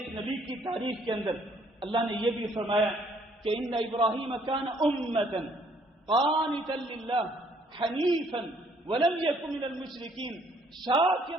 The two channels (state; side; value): normal; both; correlation 0.64